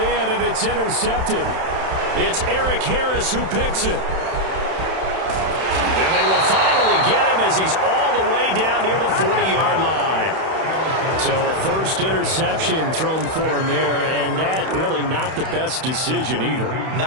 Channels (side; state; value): left; late; 31 ms